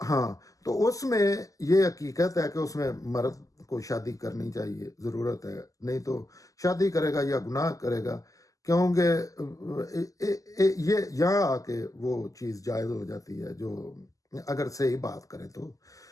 ہاں، تو اس میں یہ حقیقت ہے کہ اس میں مرد کو شادی کرنی چاہیے، ضرورت ہے، نہیں تو شادی کرے گا یا گناہ کرے گا، کیونکہ یہ یہاں آ کے وہ چیز جائز ہو جاتی ہے، جو اگر صحیح بات کریں تو،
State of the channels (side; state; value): right; late; 0.17 ms